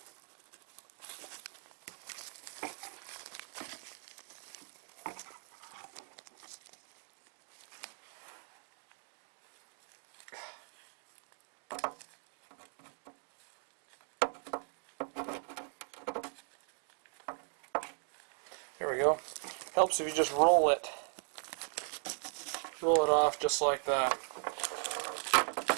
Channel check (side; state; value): left; silent; 52 dB below the other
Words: There we go. Helps if you just roll it. Roll it off just like that.